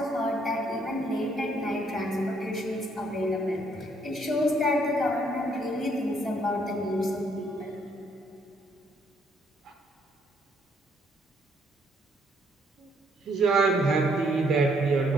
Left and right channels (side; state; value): both; normal; correlation 0.69